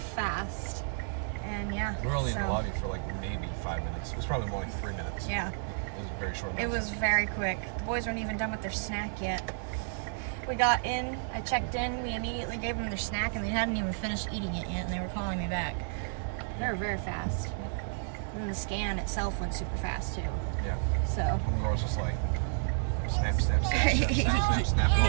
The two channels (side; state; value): left; silent; 57 dB below the other